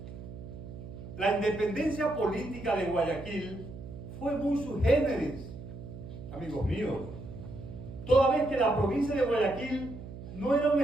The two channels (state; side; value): noise; right; hum, 12 dB below the sound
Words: La independencia política de Guayaquil fue muy sui generis, amigos míos, toda vez que la provincia de Guayaquil no era un